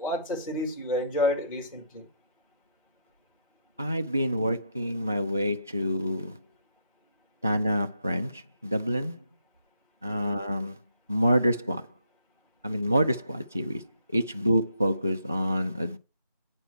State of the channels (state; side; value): inverted; both; correlation -0.71